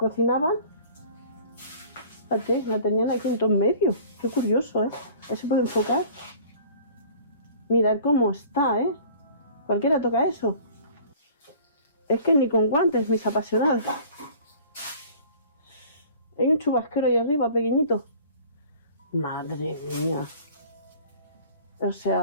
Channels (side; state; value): both; inverted; correlation -0.47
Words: Fíjate, la tenían aquí en todo en medio. Qué curioso, ¿eh? Ahí se puede enfocar. Mirad cómo está, ¿eh? Cualquiera toca eso. Es que ni con guantes, mis apasionados. Hay un chubasquero ahí arriba, pequeñito. Madre mía. O